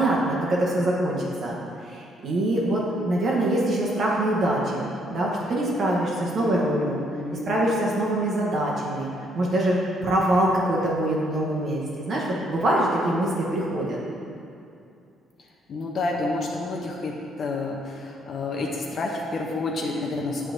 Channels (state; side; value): normal; both; correlation 0.69